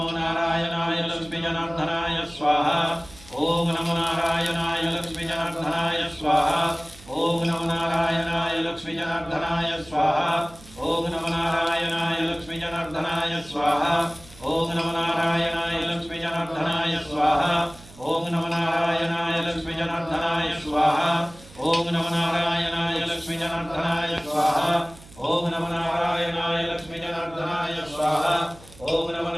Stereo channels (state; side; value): noise; right; hum, 21 dB below the sound